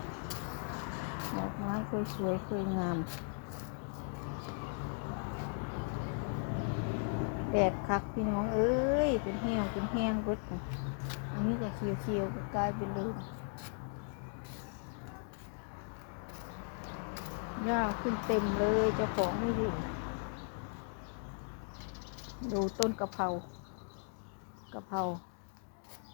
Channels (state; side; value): silent; right; 53 dB below the other